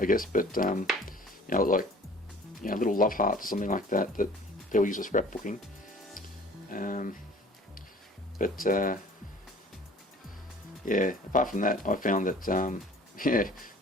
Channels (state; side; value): normal; both; correlation 0.50